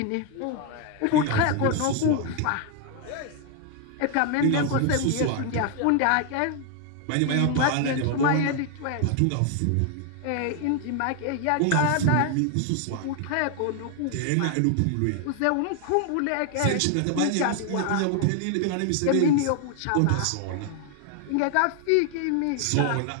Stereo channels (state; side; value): different; both; correlation 0.00